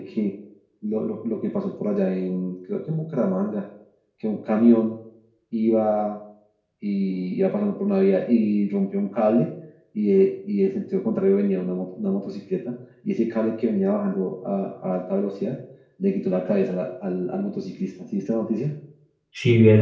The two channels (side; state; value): both; identical; correlation 1.00